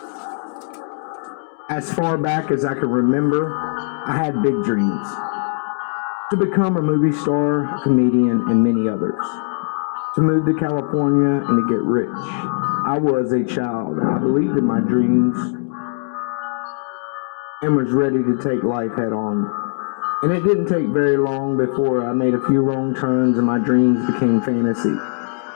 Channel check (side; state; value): right; silent; 65 dB below the other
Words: As far back as I can remember, I had big dreams. To become a movie star, a comedian, and many others. To move to California and to get rich. I was a child. I believed in my dreams and was ready to take life head on. And it didn't take very long before I made a few wrong turns and my dreams became fantasy